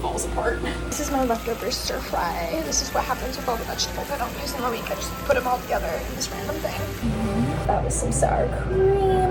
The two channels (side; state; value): both; identical; correlation 1.00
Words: apart. This is my leftover stir fry. This is what happens with all the vegetables I don't use in a week. I just put them all together in this random thing. That was some sour